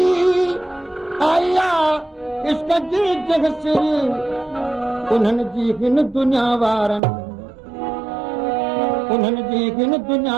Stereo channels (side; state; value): left; drops out; at 7.0 s